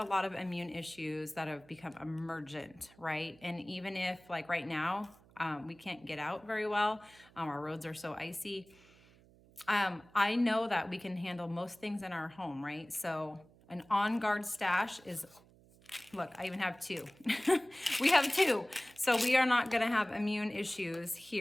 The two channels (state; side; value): noise; right; hum, 27 dB below the sound